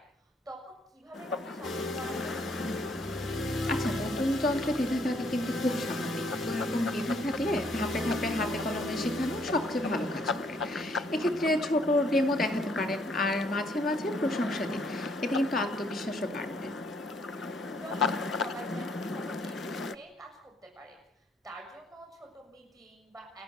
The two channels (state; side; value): normal; both; correlation 0.68